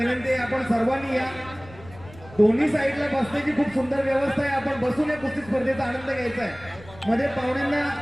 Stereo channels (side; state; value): left; noise; rumble, 20 dB below the sound